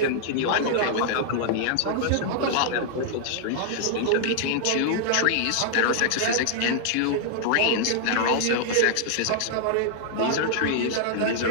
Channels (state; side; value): different; both; correlation -0.01